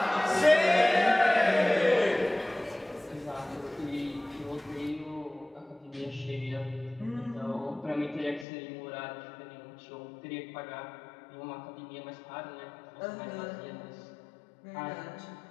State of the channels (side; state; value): right; drops out; at 8.5 s